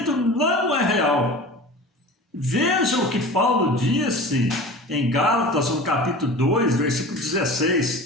não é real. Veja o que Paulo disse em Gálatas, no capítulo 2, versículo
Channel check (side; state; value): both; normal; correlation 0.37